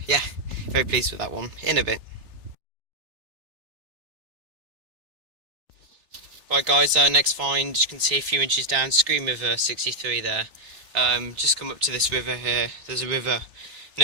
yeah, very pleased with that one. In a bit. Right guys, next find, you can see a few inches down, Scream River 63 there. Just come up to this river here. There's a river.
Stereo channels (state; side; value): late; left; 3.4 ms